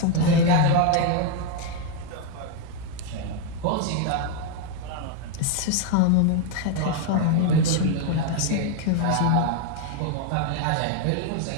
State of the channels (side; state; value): both; different; correlation 0.01